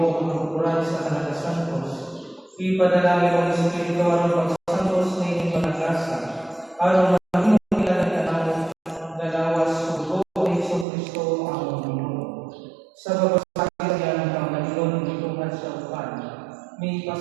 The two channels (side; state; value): left; drops out; at 10.9 s